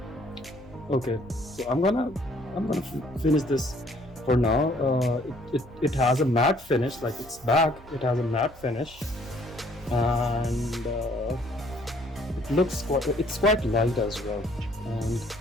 Okay, so I'm gonna finish this for now. It has a matte finish, like its back. It has a matte finish, and it's quite light as well.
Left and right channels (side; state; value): both; normal; correlation 0.61